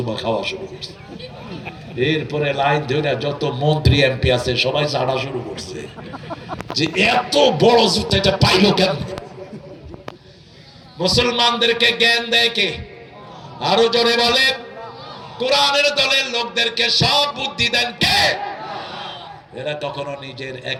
খাওয়া শুরু করছে। এরপরে লাইন ধরে যত মন্ত্রী এমপি আছে সবাই ছাড়া শুরু করছে যে এত বড় জুতা এটা পাইলো কেন? মুসলমানদেরকে জ্ঞান দেয় কে? আরো জোরে বলে। কোরআনের দলের লোকদেরকে সব বুদ্ধি দেন কে? এরা কখনো নিজের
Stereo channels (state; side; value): identical; both; correlation 1.00